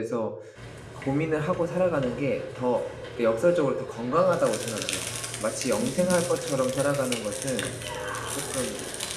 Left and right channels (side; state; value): both; identical; correlation 1.00